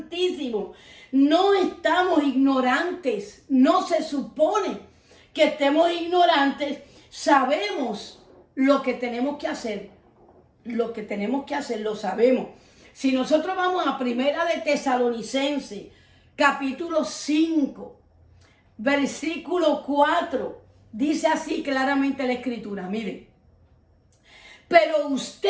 No estamos ignorantes. No se supone que estemos ignorantes. Sabemos lo que tenemos que hacer. Lo que tenemos que hacer lo sabemos. Si nosotros vamos a Primera de Tesalonicenses, capítulo 5, versículo 4, dice así claramente la Escritura. Miren. Pero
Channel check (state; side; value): identical; both; correlation 1.00